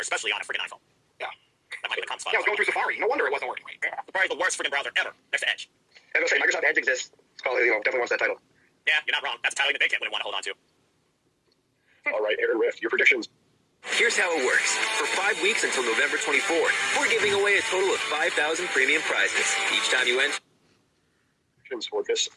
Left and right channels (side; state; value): both; identical; correlation 1.00